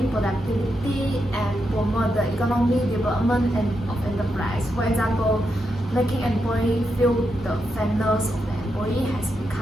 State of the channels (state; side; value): normal; both; correlation 0.84